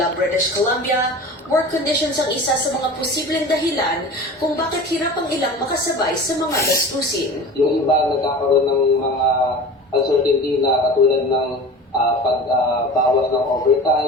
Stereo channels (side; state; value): both; normal; correlation 0.36